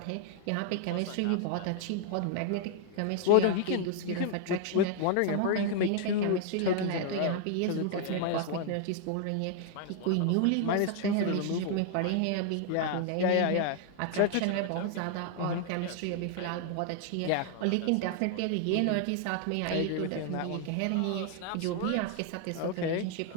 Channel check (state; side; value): different; both; correlation 0.00